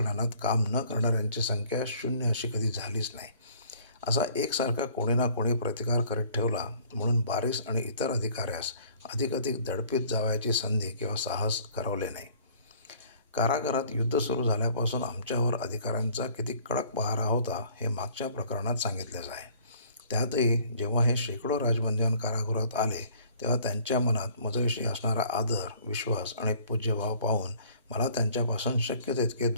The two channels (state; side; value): inverted; both; correlation -0.55